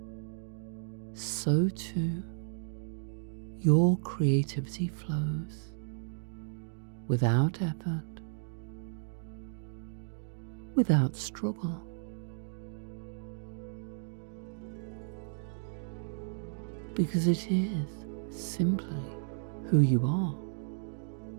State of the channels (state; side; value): silent; left; digital silence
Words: so too your creativity flows without effort, without struggle. Because it is simply who you are.